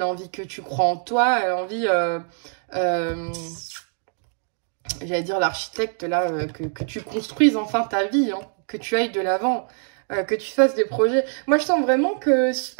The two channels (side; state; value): left; silent; 59 dB below the other